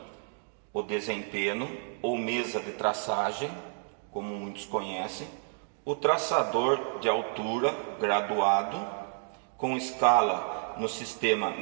o desempenho ou mesa de traçagem, como muitos conhecem, o traçador de altura graduado, com escala no sistema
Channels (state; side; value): silent; left; 57 dB below the other